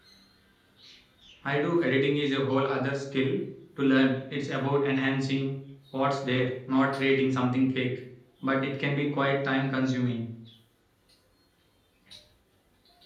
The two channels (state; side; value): identical; both; correlation 1.00